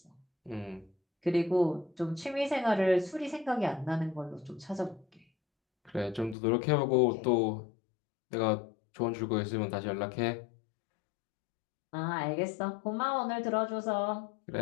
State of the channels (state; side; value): drops out; right; at 6.4 s